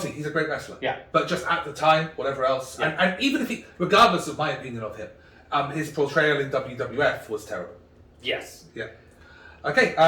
he's a great wrestler. Yeah. But just at the time, whatever else, and even if regardless of my opinion of him, His portrayal in WWF was terrible. Yes. Yeah. Okay,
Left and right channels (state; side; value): identical; both; correlation 1.00